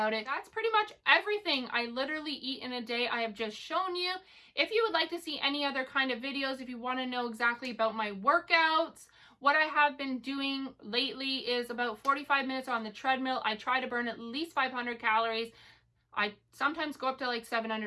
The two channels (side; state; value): both; identical; correlation 1.00